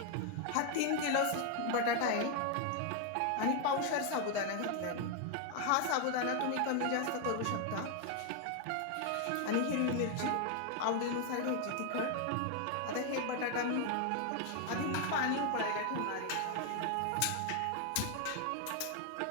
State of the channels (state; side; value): different; both; correlation 0.01